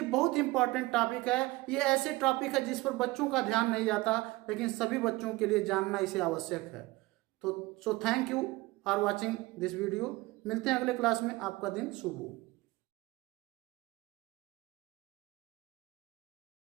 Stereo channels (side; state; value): left; quieter; 20.9 dB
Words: बहुत इंपॉर्टेंट टॉपिक है, ये ऐसे टॉपिक है जिस पर बच्चों का ध्यान नहीं जाता, लेकिन सभी बच्चों के लिए जानना इसे आवश्यक है। तो thank you for watching this video. मिलते हैं अगले क्लास में, आपका दिन शुभ हो।